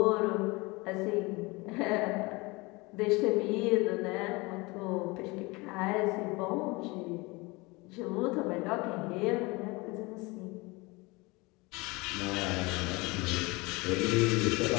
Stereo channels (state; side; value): quieter; right; 24.7 dB